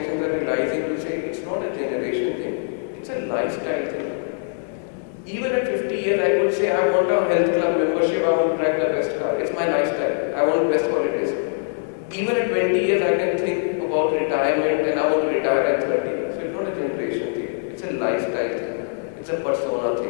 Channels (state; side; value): silent; right; digital silence